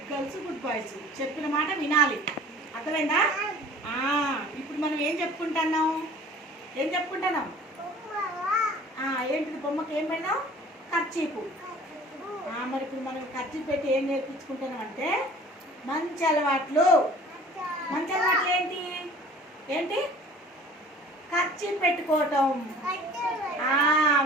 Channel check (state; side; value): normal; both; correlation 0.47